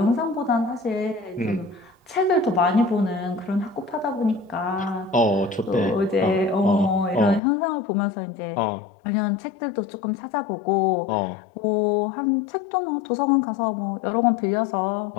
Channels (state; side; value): drops out; right; at 7.4 s